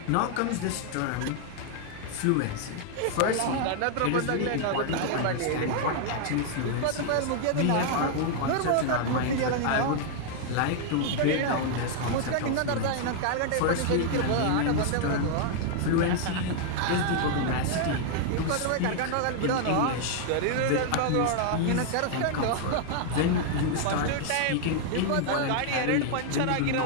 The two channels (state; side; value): different; both; correlation 0.00